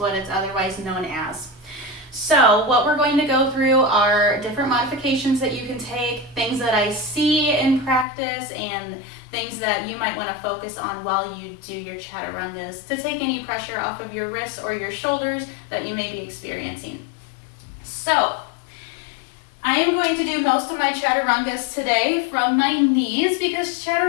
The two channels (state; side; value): drops out; right; at 8.1 s